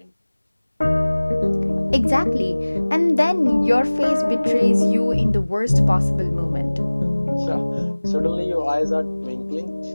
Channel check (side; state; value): both; inverted; correlation -1.00